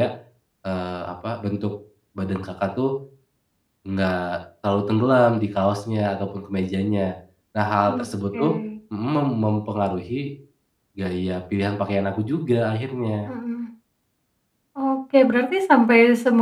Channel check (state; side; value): identical; both; correlation 1.00